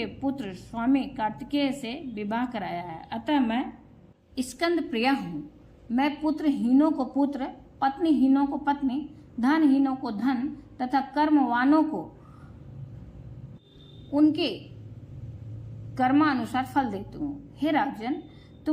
पुत्र स्वामी कार्तिकेय से विवाह कराया है, अतः मैं स्कंद प्रिया हूँ। मैं पुत्रहीनों को पुत्र, पत्नीहीनों को पत्नी, धनहीनों को धन तथा कर्मवानों को उनके कर्मानुसार फल देती हूँ। हे राजन,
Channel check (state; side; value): identical; both; correlation 1.00